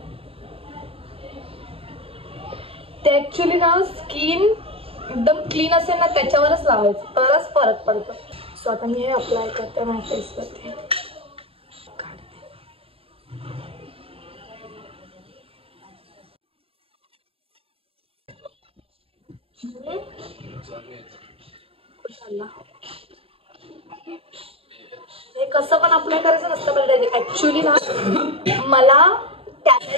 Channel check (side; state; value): left; late; 0.27 ms